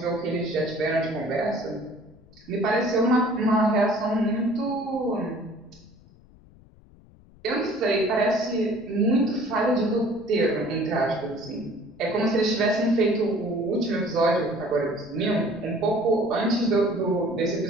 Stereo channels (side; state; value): left; noise; rumble, 25 dB below the sound